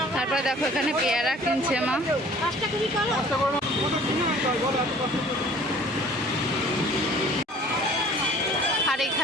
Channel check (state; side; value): normal; both; correlation 0.51